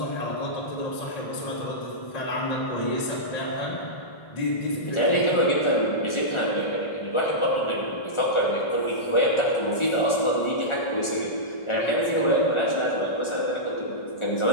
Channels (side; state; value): right; late; 1.4 ms